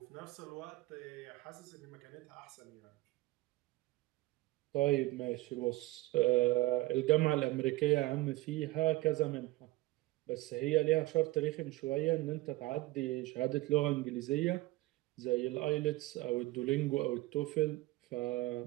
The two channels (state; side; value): quieter; left; 19.1 dB